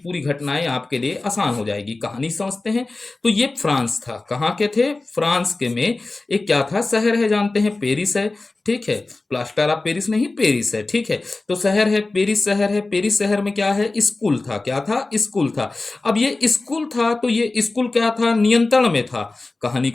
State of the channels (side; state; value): right; quieter; 3.3 dB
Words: घटनाएं आपके लिए आसान हो जाएगी। कहानी समझते हैं। तो ये फ्रांस था। कहाँ के थे? फ्रांस के में एक क्या था? शहर है, जानते हैं, पेरिस है। ठीक है, प्लास्टर ऑफ पेरिस नहीं, पेरिस है। ठीक है, तो शहर है पेरिस, शहर है पेरिस। शहर में क्या है? स्कूल था। क्या था? स्कूल था। अब ये स्कूल था तो ये स्कूल क्या था? नियंत्रण में था। कहानी